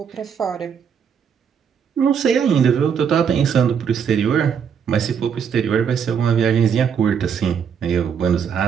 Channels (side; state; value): left; quieter; 7.3 dB